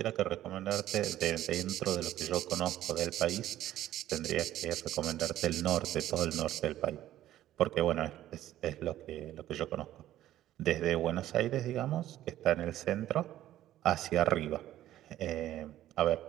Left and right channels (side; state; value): left; quieter; 13.3 dB